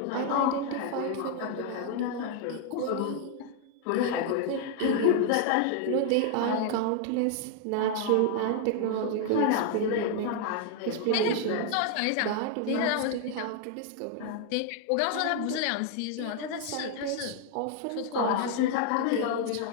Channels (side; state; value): both; different; correlation 0.00